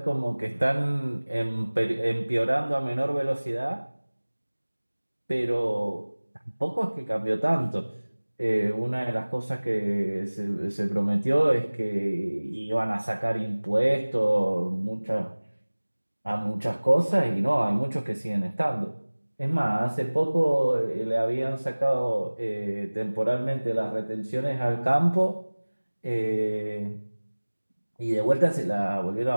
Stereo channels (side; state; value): both; inverted; correlation -1.00